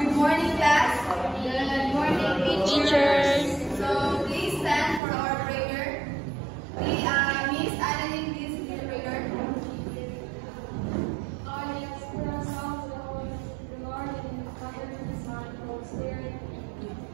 morning, class. Good morning, Teachers. So please stand for our prayer. Miss Annalyn, please lead the prayer. Yes, for ourselves, the Lord, and the Father, and the Son, and the Holy Spirit.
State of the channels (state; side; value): drops out; left; at 5.0 s